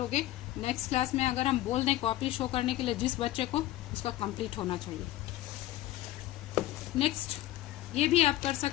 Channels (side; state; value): right; quieter; 15.2 dB